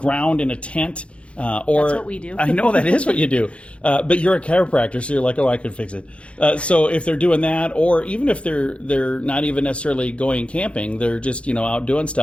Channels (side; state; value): right; late; 0.060 ms